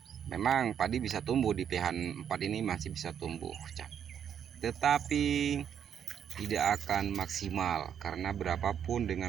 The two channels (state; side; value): quieter; left; 8.6 dB